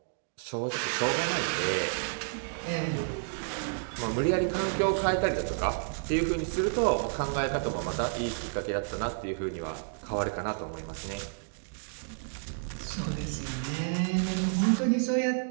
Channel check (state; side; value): silent; left; digital silence